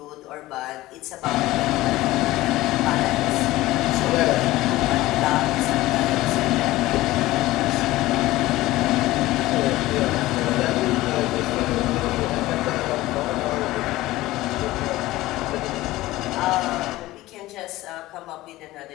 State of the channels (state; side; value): quieter; right; 17.5 dB